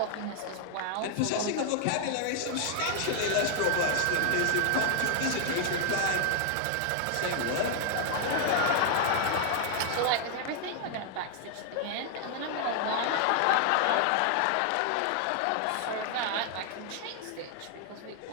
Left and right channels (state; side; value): different; both; correlation 0.00